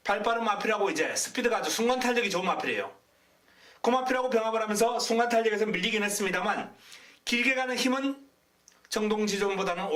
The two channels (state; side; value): identical; both; correlation 1.00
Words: 발빠른 마필하고 이제 스피드가 아주 순간 탄력이 좋은 마필이에요. 그 마필하고 병합을 하면서 순간 탄력에서 밀리긴 했습니다만 길게 가는 힘은 정동지전보다는